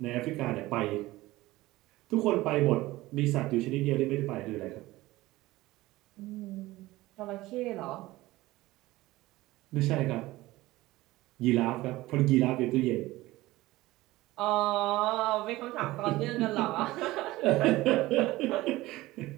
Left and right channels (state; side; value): quieter; left; 18.3 dB